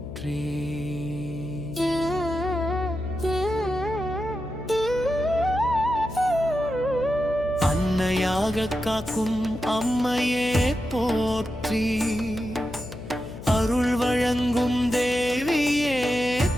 அன்னையாக காக்கும் அம்மையே போற்றி அருள் வழங்கும் தேவியே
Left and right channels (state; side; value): noise; left; hum, 12 dB below the sound